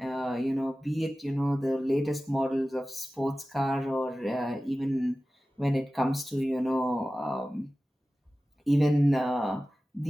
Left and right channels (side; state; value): both; normal; correlation 0.96